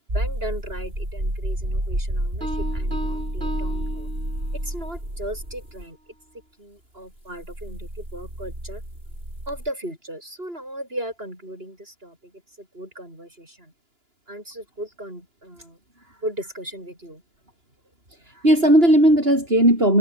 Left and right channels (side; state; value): left; late; 2.9 ms